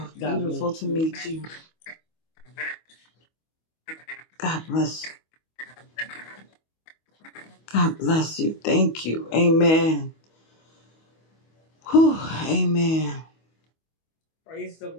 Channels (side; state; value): right; late; 25 ms